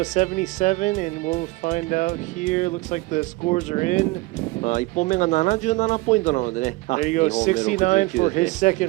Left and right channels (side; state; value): left; quieter; 21.9 dB